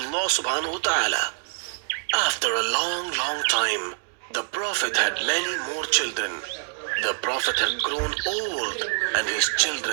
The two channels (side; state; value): left; silent; digital silence